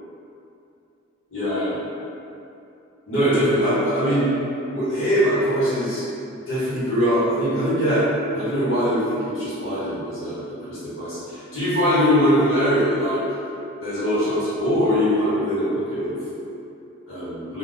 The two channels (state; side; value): normal; both; correlation 0.38